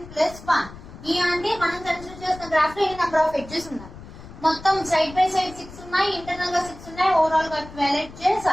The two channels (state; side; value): noise; left; rumble, 16 dB below the sound